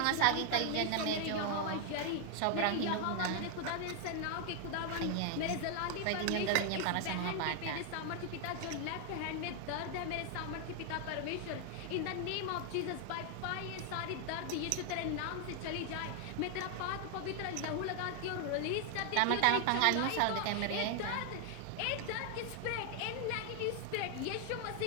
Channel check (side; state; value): both; different; correlation 0.00